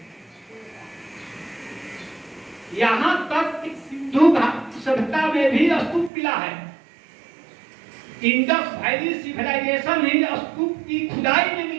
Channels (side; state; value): left; drops out; at 6.1 s